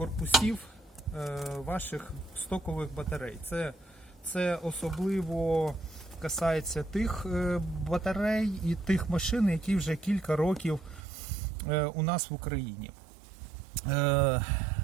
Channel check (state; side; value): drops out; left; at 11.0 s